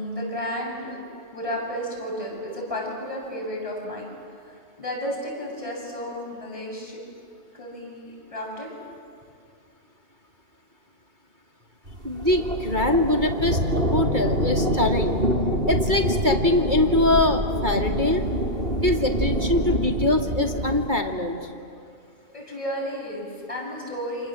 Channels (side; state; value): left; late; 2.2 ms